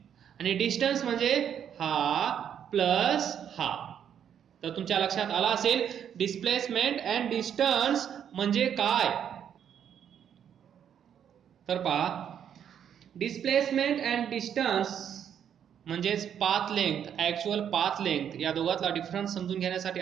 आणि डिस्टन्स म्हणजे हा प्लस हा. तर तुमच्या लक्षात आला असेल डिस्प्लेसमेंट अँड डिस्टन्स म्हणजे काय. तर पहा डिस्प्लेसमेंट अँड डिस्टन्स म्हणजेच path length, actual path length, या दोघातला डिफरन्स समजून घेण्यासाठी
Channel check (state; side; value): quieter; left; 8.9 dB